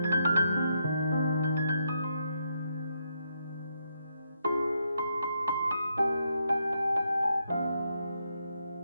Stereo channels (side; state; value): both; inverted; correlation -0.79